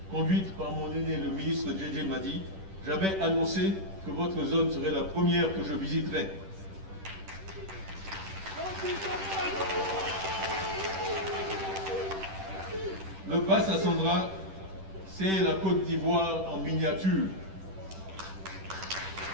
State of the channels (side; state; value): left; late; 10 ms